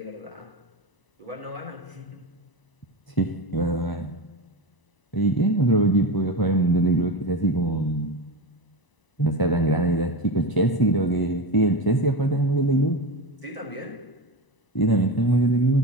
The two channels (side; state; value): right; late; 1.0 ms